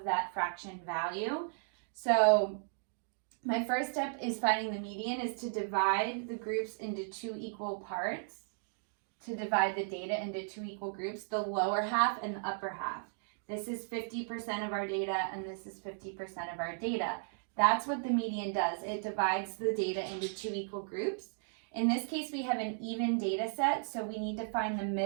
that fraction value. So my first step is finding the median is to divide the groups into 2 equal parts, to divide the data into 2 equal groups, the lower half and the upper half. This is 50% of our data and this is 50% of our data. That's what the median does. It divides the data into 2 equal groups. In this case, we have an even data set, so we need to find the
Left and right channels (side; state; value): left; silent; digital silence